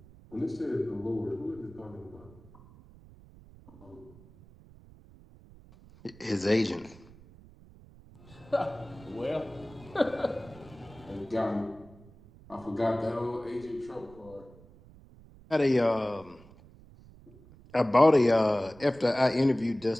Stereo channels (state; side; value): noise; right; rumble, 23 dB below the sound